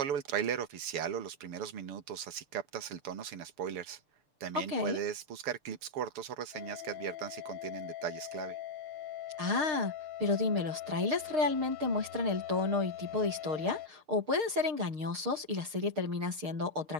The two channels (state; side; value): late; left; 6.5 ms